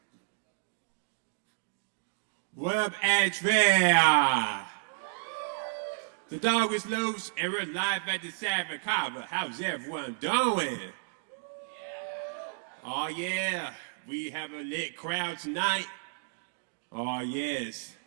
What up, ASHEVILLE? The dog is loose and we're live at the Savage Kava. How's everyone doing? Oh yeah, we have a lit crowd tonight. Oh yes,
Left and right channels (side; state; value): left; silent; digital silence